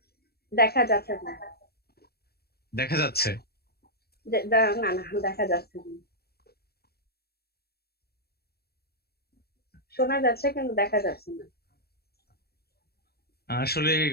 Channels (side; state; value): right; late; 0.46 ms